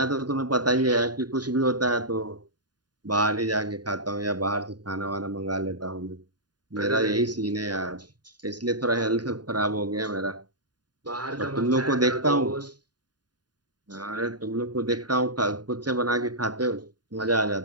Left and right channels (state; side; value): late; left; 0.70 ms